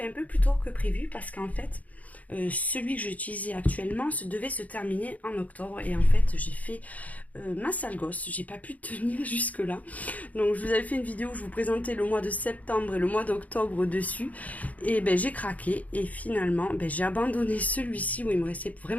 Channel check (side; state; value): right; late; 0.073 ms